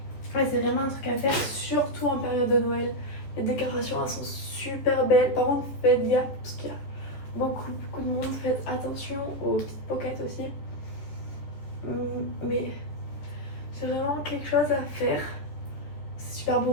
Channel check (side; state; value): right; late; 14 ms